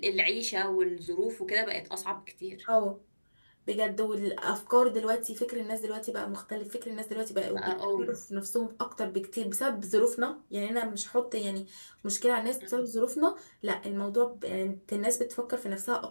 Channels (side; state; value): both; inverted; correlation -1.00